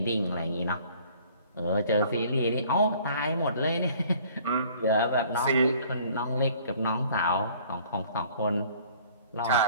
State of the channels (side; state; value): both; inverted; correlation -0.54